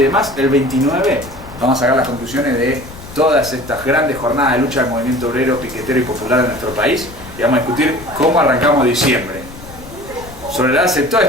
demás. El 29 vamos a sacar las conclusiones de todas estas grandes jornadas de lucha del movimiento obrero, piquetero y popular de nuestro país y vamos a discutir cómo arrancamos diciembre. Sobre la base de todo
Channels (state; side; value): noise; left; rumble, 17 dB below the sound